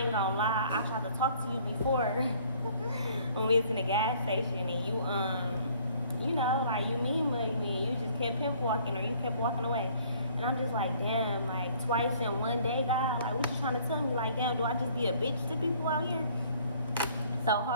gonna lie, I tried to talk to you before when we was in the gas station, and you know, like, you mean mugged me, you just kept pimp walking, or you kept walking away. And I'm just like, damn, like, twice in one day, God, like, what you trying to tell me? Like, damn, do I just be a bitch to people out here? So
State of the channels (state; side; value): inverted; both; correlation -0.58